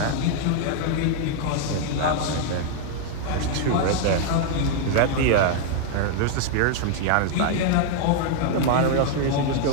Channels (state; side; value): different; both; correlation 0.00